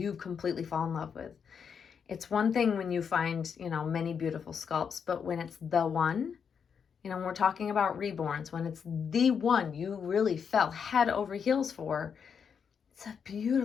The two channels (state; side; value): quieter; right; 6.8 dB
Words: completely fall in love with. It's one thing when you find, many beautiful sculpts, but when it's the one, when we're talking about reborns, when it's the one you really fell head over heels for, it's a